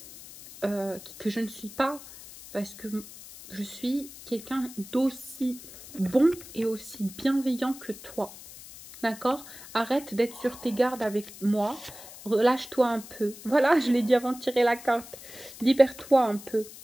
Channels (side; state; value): left; noise; hiss, 16 dB below the sound